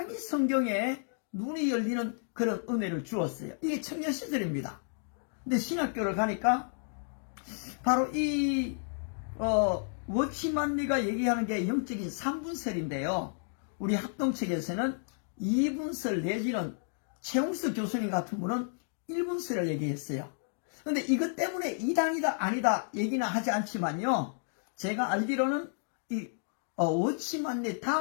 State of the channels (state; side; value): silent; right; digital silence